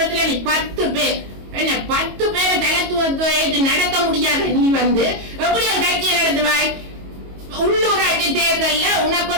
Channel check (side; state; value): left; late; 22 ms